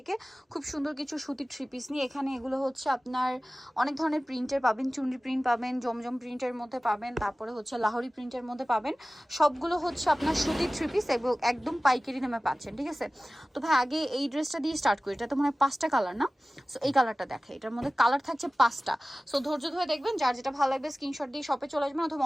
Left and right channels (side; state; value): both; normal; correlation 0.97